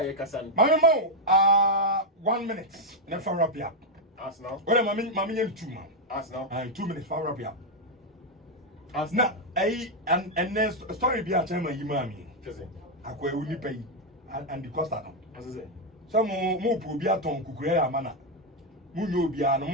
can. Mama, 1 minute. Never wrap up. As now. Well, Mammy, 2 man. As now. 2 minutes for wrap up. As now. And then story be a time you mammy. I go only pay and the cost. As I say. Some more probia ton kukuera mana. Munyo bia no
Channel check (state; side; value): normal; both; correlation 0.01